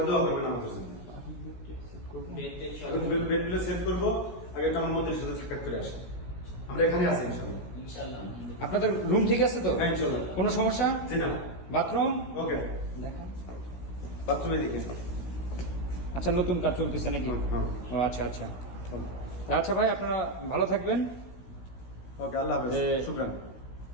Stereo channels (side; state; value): right; late; 16 ms